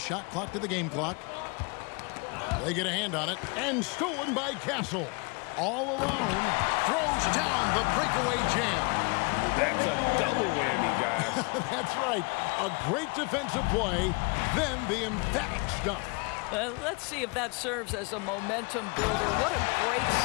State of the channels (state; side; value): quieter; right; 30.7 dB